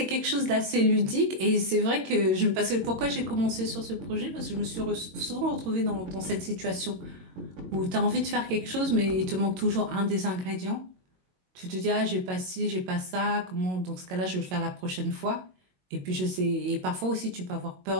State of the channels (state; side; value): late; left; 22 ms